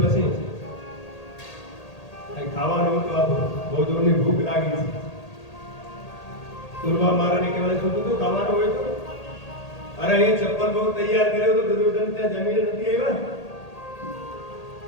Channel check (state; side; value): late; right; 1.8 ms